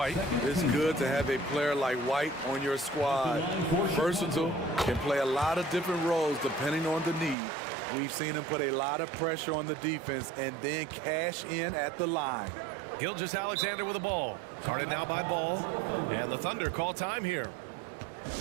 It's good to have a player like White on your squad. Versatile, can play a lot of different roles depending on the need. We've seen him put a lot of pressure on the defense and then cash in at the line. Gilgeous-Alexander with the ball. Guarded now by Ball. And the Thunder call time here.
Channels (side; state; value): left; drops out; at 7.4 s